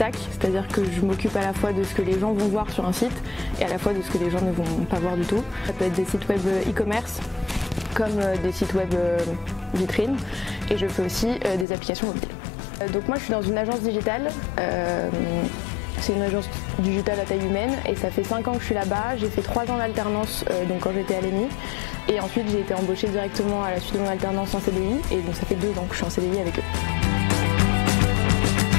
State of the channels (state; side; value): drops out; right; at 11.7 s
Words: c'est-à-dire que je m'occupe à la fois de ce que les gens vont voir sur un site et à la fois de ce que les gens ne vont pas voir du tout. Ça peut être des sites web e-commerce comme des sites web vitrines et je fais aussi des applications mobiles. Donc moi je suis dans une agence digitale. C'est une agence digitale à taille humaine et ça fait 5 ans que je suis là-bas. J'ai fait 3 ans d'alternance donc quand j'étais à l'EMI et ensuite j'ai été embauchée directement à la suite de mon alternance en CDI et donc ça fait 2 ans que je suis en CDI avec eux.